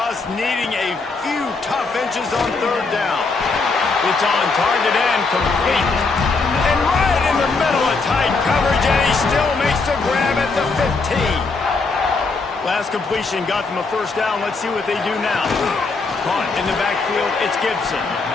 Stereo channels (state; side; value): quieter; right; 4.1 dB